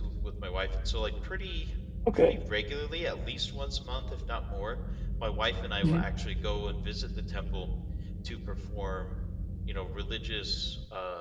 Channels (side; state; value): both; identical; correlation 1.00